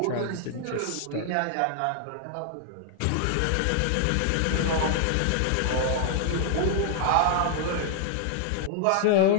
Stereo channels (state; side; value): different; both; correlation 0.00